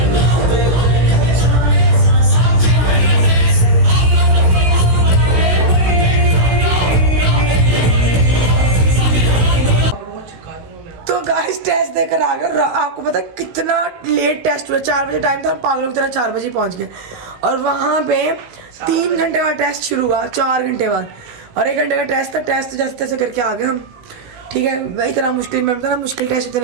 टेस्ट देकर आ गए, आपको पता कितना लेट टेस्ट हुआ, 4 बजे टाइम था, पागलों की तरह 4 बजे पहुंच गए, और वहाँ पे 3 घंटे बाद टेस्ट शुरू हुआ, 4 घंटे बाद, और 1 घंटे का टेस्ट था। टेस्ट जैसे तैसे करके आ गए हम, ठीक है। वही इतना मुश्किल, मैं बताना मुश्किल टेस्ट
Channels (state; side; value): late; left; 16 ms